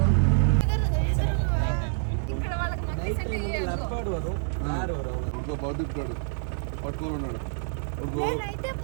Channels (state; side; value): silent; left; digital silence